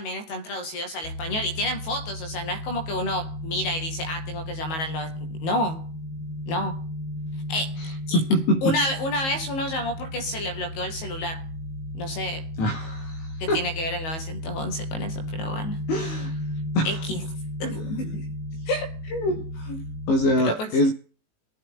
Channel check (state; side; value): late; right; 19 ms